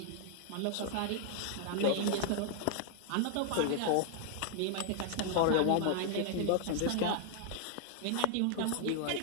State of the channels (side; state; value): both; different; correlation 0.00